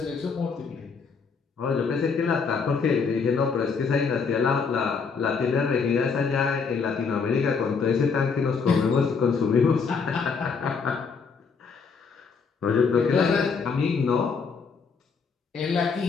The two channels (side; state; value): right; quieter; 5.3 dB